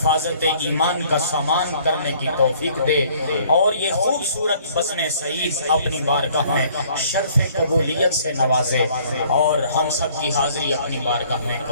ایمان کا سامان کرنے کی توفیق دے، اور یہ خوبصورت بزم سعید اپنی بارگاہ میں شرف قبولیت سے نوازے، اور ہم سب کی حاضری اپنی بارگاہ میں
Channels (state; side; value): inverted; both; correlation -0.58